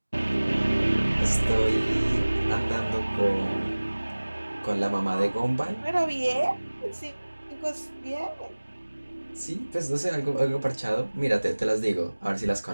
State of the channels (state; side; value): inverted; both; correlation -1.00